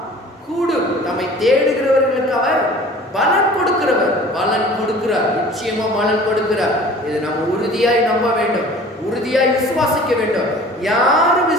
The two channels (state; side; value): normal; both; correlation 0.45